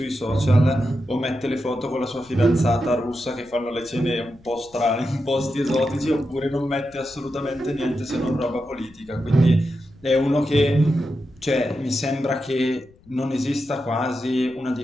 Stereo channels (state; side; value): noise; left; rumble, 28 dB below the sound